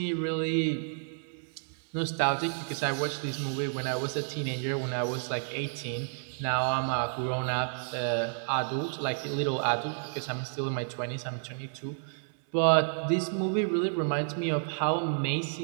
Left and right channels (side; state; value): left; silent; 56 dB below the other